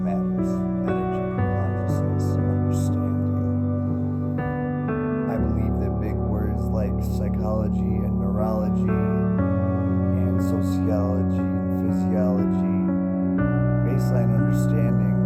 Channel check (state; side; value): identical; both; correlation 1.00